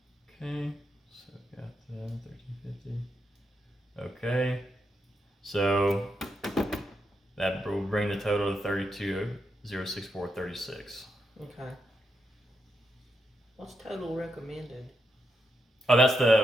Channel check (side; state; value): both; normal; correlation 0.83